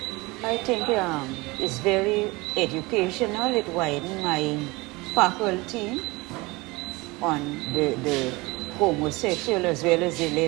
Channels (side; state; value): left; quieter; 23.2 dB